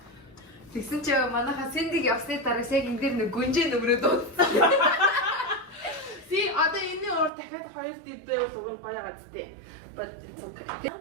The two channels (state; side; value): drops out; left; at 7.3 s